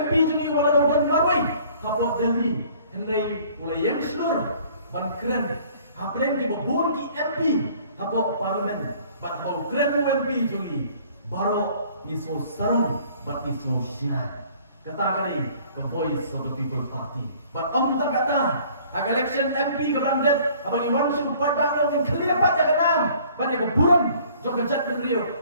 juni wala do dan marwai. Hapok Delhi. Henry mulai yang slur. Ban keren. Ha pleng ki babun ki MP. Hapok parlimen. Ban hau keren MP juni. Baro iso sarang bat iso syah. Kata kali ke Voice of the People Party. But tak kata agak election MP ke Brandet abang Iwan supaya bang yang clear pat ya kenam banyak keburan jok kejat beliau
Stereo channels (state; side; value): inverted; both; correlation -0.55